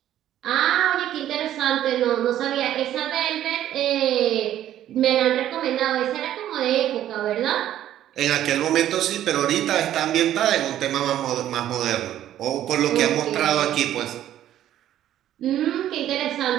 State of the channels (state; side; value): quieter; left; 12.0 dB